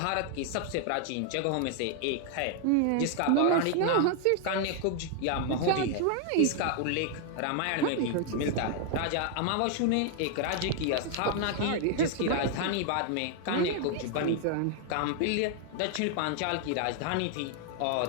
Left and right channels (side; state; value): both; different; correlation 0.00